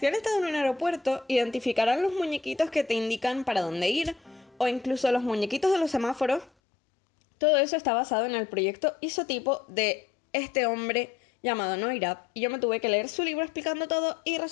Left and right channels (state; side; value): drops out; right; at 6.5 s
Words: han estado en un aeropuerto, identificarán los muñequitos que te indican para dónde ir, o incluso los muñequitos de los semáforos. Todo eso está basado en el proyecto isotipo de este hombre llamado Neurath, y yo me tuve que leer su libro explicando todo y